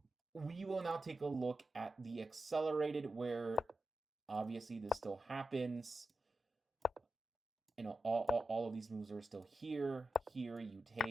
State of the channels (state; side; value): normal; both; correlation 0.90